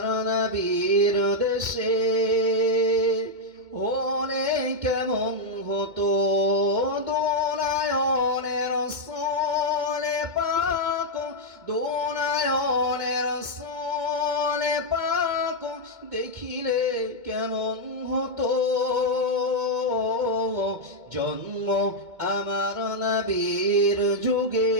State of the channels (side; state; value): left; late; 2.2 ms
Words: নবীর দেশে হলে কেমন হতো দোনায়নের সোলে পাক দোনায়নের সোলে পাক দেখিলে কেমন হতো জন্ম আমার নবীর যুগে